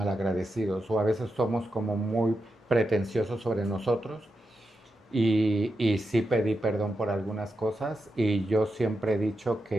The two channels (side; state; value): both; normal; correlation 0.88